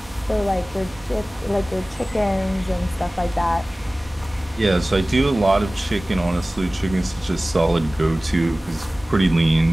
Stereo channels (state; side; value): normal; both; correlation 0.98